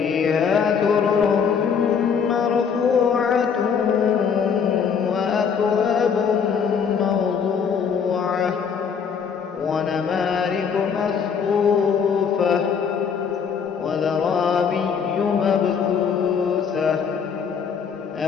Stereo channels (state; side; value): quieter; right; 6.6 dB